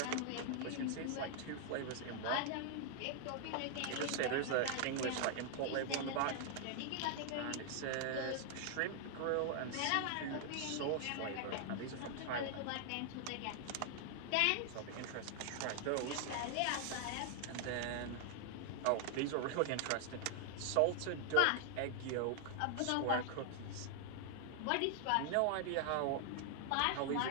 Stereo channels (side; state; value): both; different; correlation 0.00